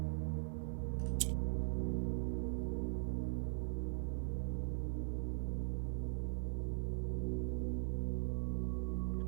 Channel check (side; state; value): left; silent; 51 dB below the other